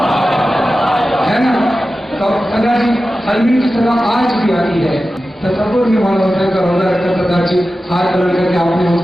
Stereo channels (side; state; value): both; normal; correlation 0.94